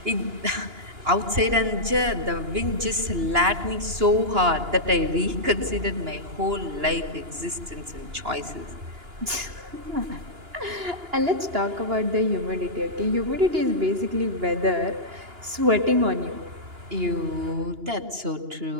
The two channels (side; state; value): left; late; 2.9 ms